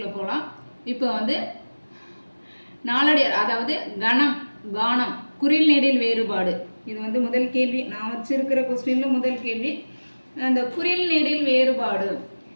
போகலாம். இப்போ நாலடியார், அதாவது கணம், கானம், குறில் நெடில் வேறுபாடு. இது முதல் கேள்வி. நான் வச்சிருக்கிற கொஸ்டினில் முதல் கேள்வி. அந்த குறில் நெடில் வேறுபாடு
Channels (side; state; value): both; inverted; correlation -1.00